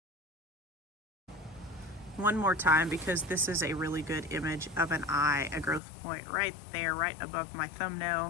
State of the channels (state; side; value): drops out; right; at 5.8 s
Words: One more time, because this is a really good image of an eye, a growth point right there, right above my